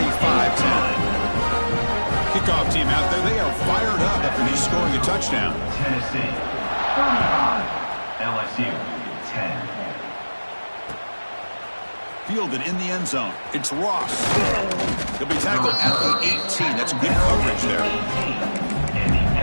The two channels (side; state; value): both; inverted; correlation -1.00